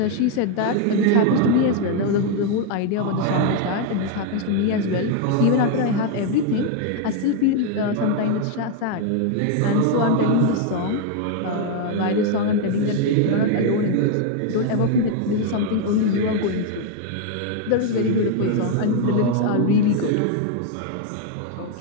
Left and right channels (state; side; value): different; both; correlation 0.01